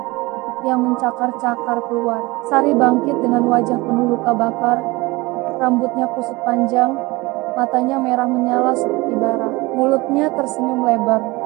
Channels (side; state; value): left; quieter; 22.4 dB